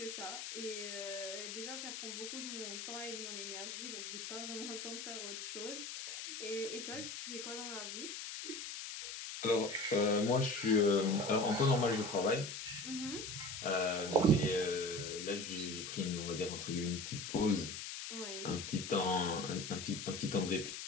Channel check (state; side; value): noise; left; hiss, 7 dB below the sound